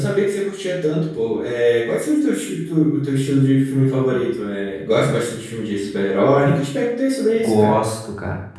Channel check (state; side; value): identical; both; correlation 1.00